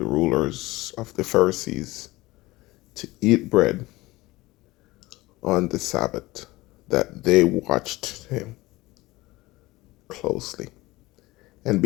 rulers of the Pharisees to eat bread on the Sabbath, that they watched him closely. And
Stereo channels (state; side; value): quieter; right; 19.9 dB